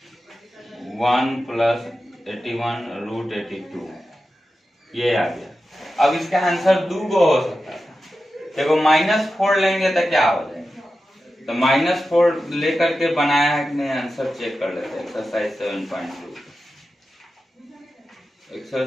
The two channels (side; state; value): both; normal; correlation 0.92